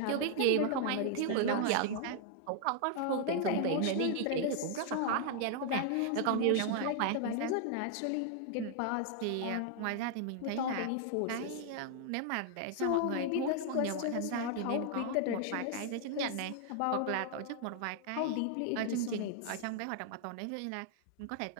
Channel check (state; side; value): different; both; correlation 0.00